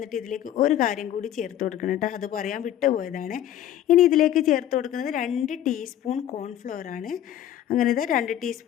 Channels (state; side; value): quieter; right; 11.6 dB